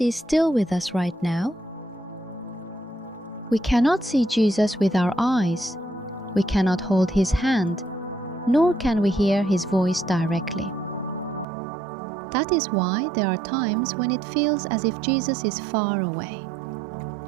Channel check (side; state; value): left; drops out; at 11.5 s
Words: is still with us right now? We cannot see Jesus with our eyes. We cannot hold his hand, nor can we hear his voice directly. That is why there are times when it feels as if Jesus is far away.